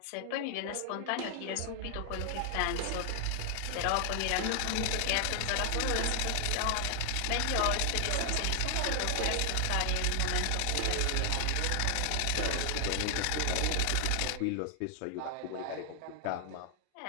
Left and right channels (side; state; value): both; different; correlation 0.00